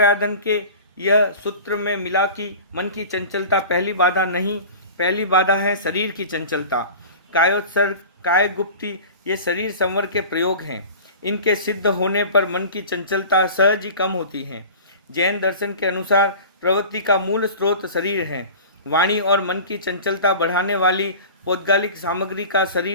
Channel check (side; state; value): both; inverted; correlation -0.37